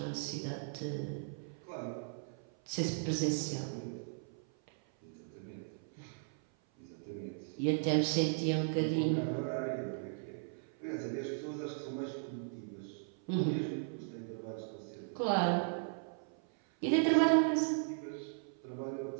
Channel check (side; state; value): left; silent; 53 dB below the other